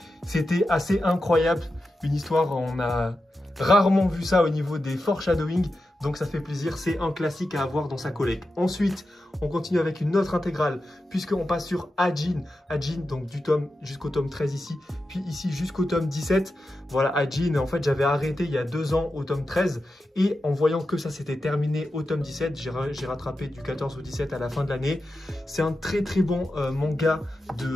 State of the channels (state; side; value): normal; both; correlation 0.90